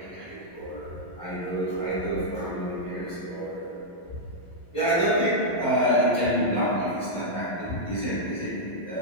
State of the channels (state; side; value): late; right; 11 ms